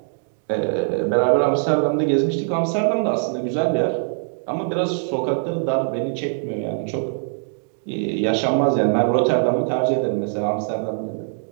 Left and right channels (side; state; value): left; silent; digital silence